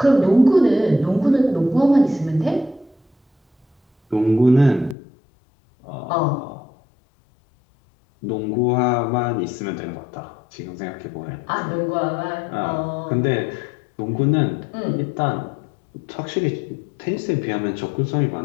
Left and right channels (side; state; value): right; drops out; at 5.0 s